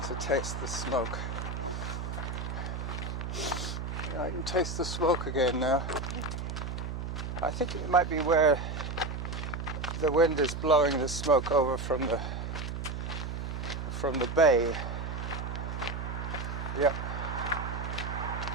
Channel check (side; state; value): right; noise; hum, 4 dB below the sound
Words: taste the smoke. Yeah, I can taste the smoke again now. I think it might be where the wind is blowing the smoke over from the bay. Yep.